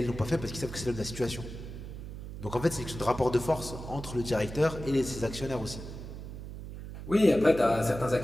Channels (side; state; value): right; noise; hum, 10 dB below the sound